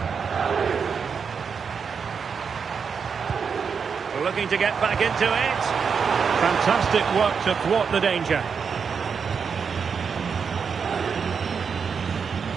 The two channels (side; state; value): left; quieter; 6.1 dB